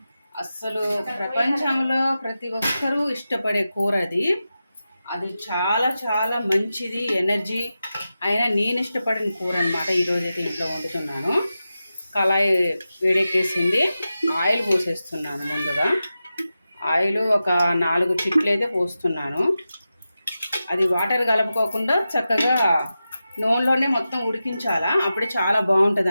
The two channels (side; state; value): both; inverted; correlation -0.92